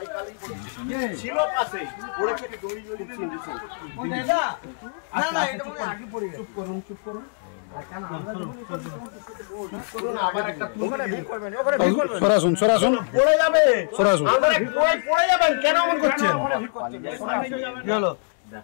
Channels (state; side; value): silent; right; digital silence